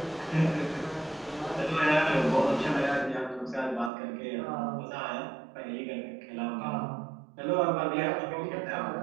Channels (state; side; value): drops out; left; at 3.9 s